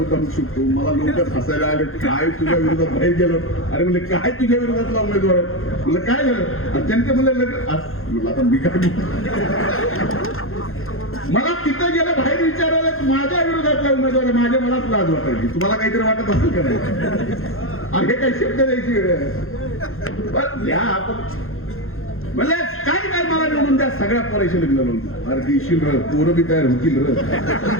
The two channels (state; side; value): late; right; 0.61 ms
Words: शकतो. मला लोक हसायला आले काय तुझ्या विरोधात बाहेर गेलो. अरे म्हणजे काय तुझ्या विरोधातला उमेदवार आहे. म्हणलं काय झालं त्यांचे म्हणलं लग्न आता मी काय मला तिथं गेलं बाहेर विचारायला माझ्या विरोधातला उमेदवार आहे. माझ्या मनात लाज वाटायची. तुम्हाला काहीतरी वाटत असेल का नाही. अरे काही शब्द द्यायची वेळ आहे. या आपण म्हणजे काय काय मला निवडून द्या. सगळ्या पोराशी लग्न लावून अरे देशील र पोरं बी तयार होतील र